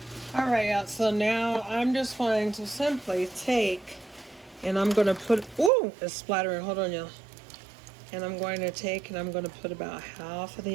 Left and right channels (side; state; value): left; drops out; at 5.7 s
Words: All right, yeah, so now I'm just going to simply take, and I'm going to put, ooh, it's splattering, hold on, y'all. And I'm going to take and I'm going to put about half of